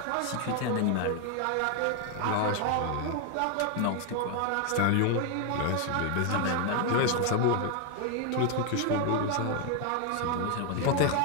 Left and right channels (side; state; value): both; different; correlation 0.01